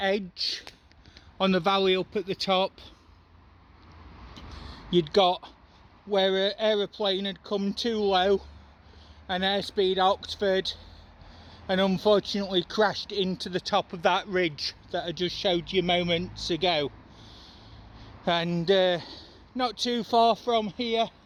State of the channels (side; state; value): both; identical; correlation 1.00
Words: on the valley up at the top, you'd got where an aeroplane had come too low, an Airspeed Oxford, and unfortunately crashed into the top of that ridge that I just showed you moments ago. And not too far from here,